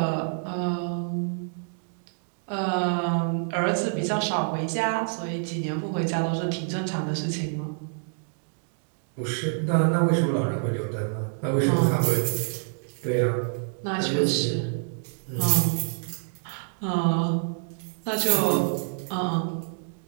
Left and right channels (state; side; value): silent; left; 60 dB below the other